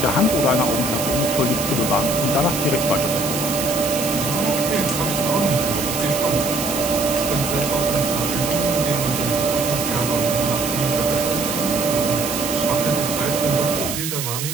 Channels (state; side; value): noise; right; hiss, 4 dB below the sound